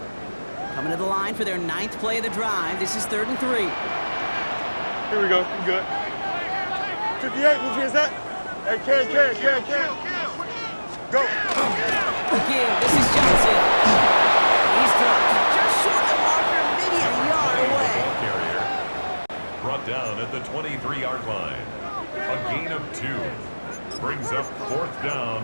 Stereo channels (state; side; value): inverted; both; correlation -1.00